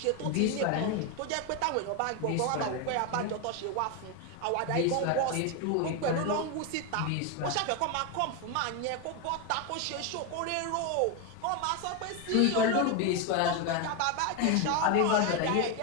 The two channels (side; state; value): both; different; correlation 0.02